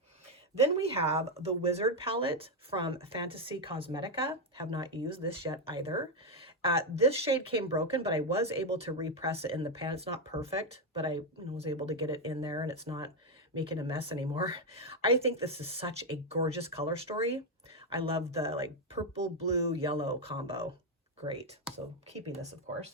Then we have the Wizard palette from Fantasy Cosmetica. Have not used this yet either. This shade came broken, but I was able to repress it in the pan. It's not perfect, but I was able to get it in there and it's not making a mess anymore. I think this is such a gorgeous color story. I love the like purple, blue, yellow combo. Great. So keeping this, of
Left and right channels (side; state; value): both; normal; correlation 0.05